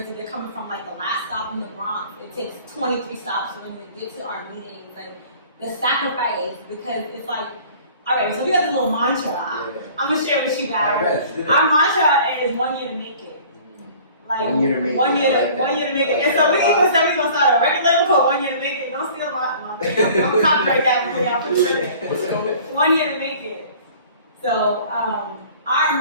they're coming from like the last stop in the Bronx. It takes 23 stops for them to get to our meetings. Like, the sacrifice, because it's like, all right, so we got this little mantra. Yeah. I'm gonna share with you guys. Our mantra is 1 year to make it. Like 1 year to make it. 1 year to make it. And so we even said we're gonna start a record label called 1 year to make it. Don't steal my thing. I'm gonna copyright that before y'all put it. What's it called? 1 year to make it. So our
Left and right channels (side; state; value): both; inverted; correlation -0.48